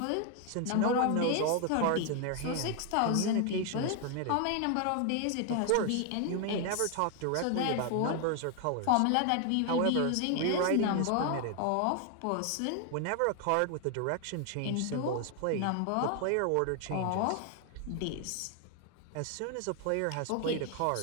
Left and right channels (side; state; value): both; different; correlation 0.00